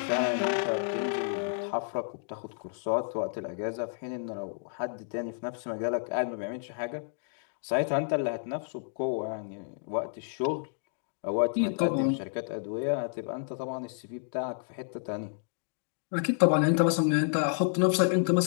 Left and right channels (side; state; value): right; silent; digital silence